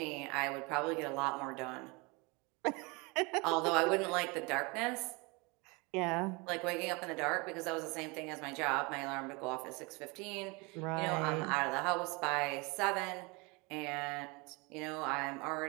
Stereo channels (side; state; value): left; quieter; 27.7 dB